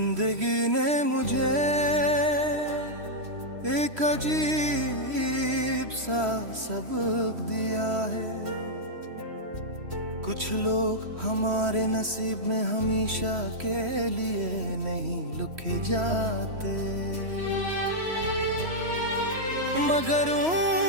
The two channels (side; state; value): left; late; 3.1 ms